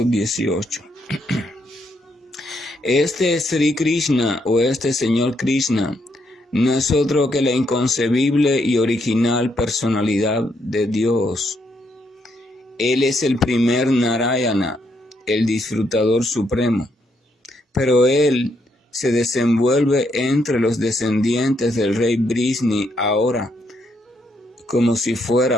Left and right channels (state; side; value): normal; both; correlation 0.76